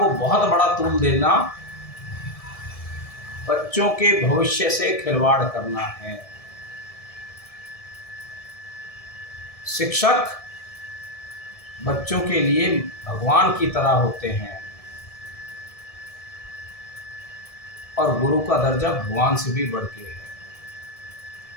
बहुत बड़ा तूल देना बच्चों के भविष्य से खिलवाड़ करना है। शिक्षक बच्चों के लिए भगवान की तरह होते हैं और गुरु का दर्जा भगवान से भी बढ़ के है।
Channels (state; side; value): late; right; 1.7 ms